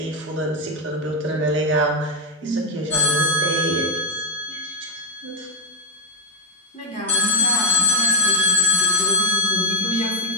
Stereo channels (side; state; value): both; normal; correlation 0.00